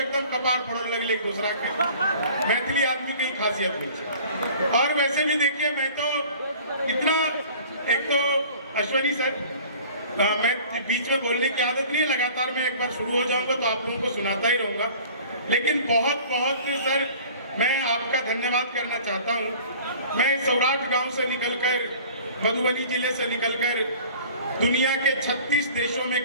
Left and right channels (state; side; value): inverted; both; correlation -0.46